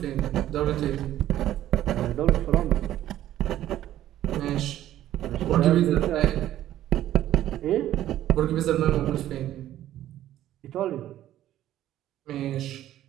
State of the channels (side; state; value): left; quieter; 12.9 dB